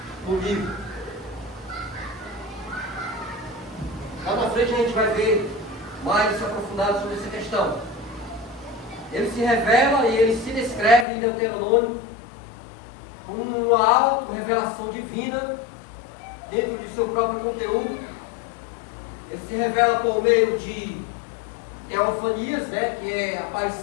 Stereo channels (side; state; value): right; drops out; at 11.1 s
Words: no livro. Lá na frente a gente vai ver mais aprofundado sobre essa questão. Ele se revela e ele se descreve em Deuteronômio como uma auto-revelação divina dentro de seu próprio conteúdo. Ele se revela por meio de teofanias, né, que é a